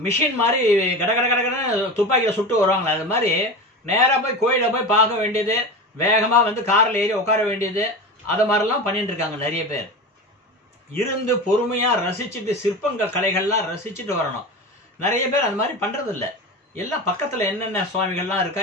மிஷின் மாதிரி கடகடன்னு துப்பாக்கியில சுட்டு வருவாங்களா, அது மாதிரி நேரா போய் கோயில போய் பார்க்க வேண்டியது, வேகமா கார்ல ஏறி உட்கார வேண்டியது, அது மாதிரிலாம் பண்ணிட்டு இருக்காங்க நிறைய பேர். இருந்து பொறுமையா ரசிச்சுட்டு சிற்பங்கள் கலைகள்லாம் ரசிச்சுட்டு வரணும். நிறைய பேர் அந்த மாதிரி பண்றது இல்லை. எல்லாம் பக்கத்துல என்னென்ன சுவாமிகள்லாம் இருக்கா,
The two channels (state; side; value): normal; both; correlation 0.27